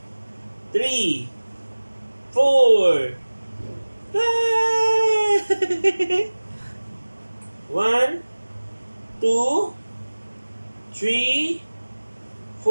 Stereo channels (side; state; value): both; inverted; correlation -1.00